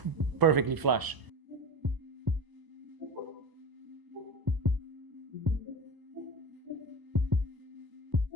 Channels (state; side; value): late; left; 1.0 ms